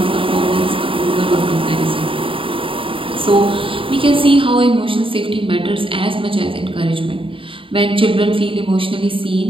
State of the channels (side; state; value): left; late; 0.25 ms